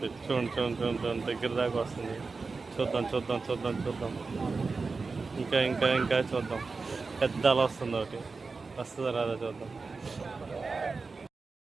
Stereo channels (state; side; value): quieter; left; 4.2 dB